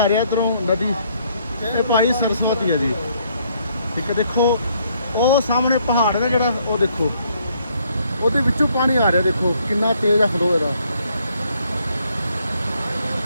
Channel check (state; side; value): inverted; both; correlation -0.69